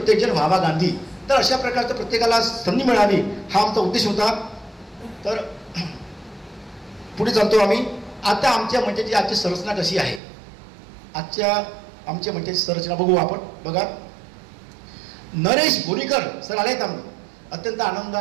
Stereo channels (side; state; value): left; drops out; at 10.2 s